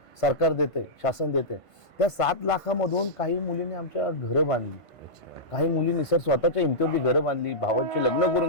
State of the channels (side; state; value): right; late; 1.5 ms